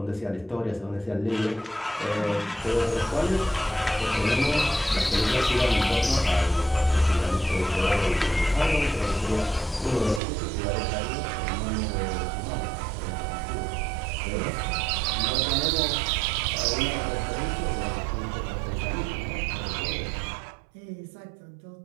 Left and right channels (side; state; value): left; drops out; at 10.2 s